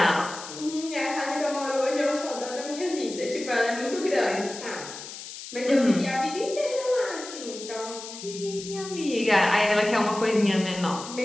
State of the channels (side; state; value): left; noise; hiss, 12 dB below the sound